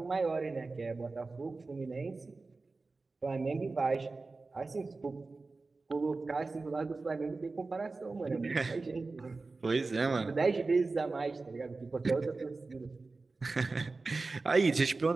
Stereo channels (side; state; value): left; quieter; 3.7 dB